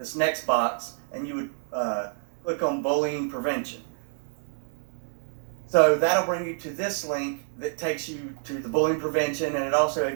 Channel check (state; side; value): silent; left; 60 dB below the other